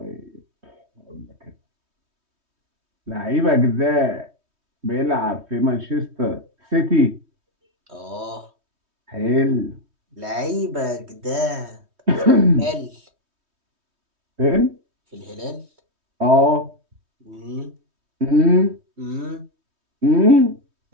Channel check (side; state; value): left; late; 3.2 ms